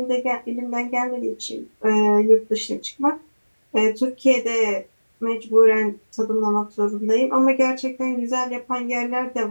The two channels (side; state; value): both; inverted; correlation -1.00